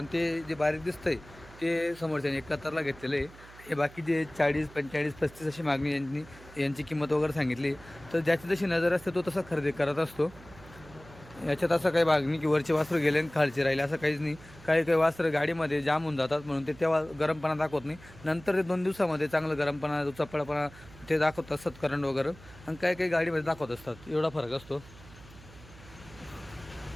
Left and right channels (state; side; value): noise; right; hum, 20 dB below the sound